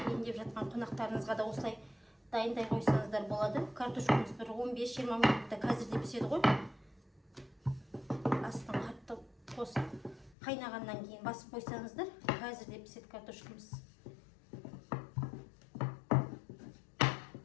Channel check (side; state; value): right; drops out; at 10.4 s